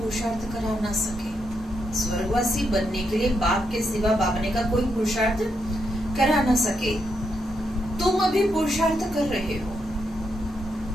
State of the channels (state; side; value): normal; both; correlation 0.80